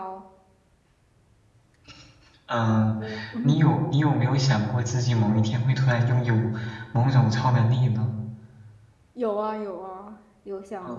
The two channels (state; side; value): identical; both; correlation 1.00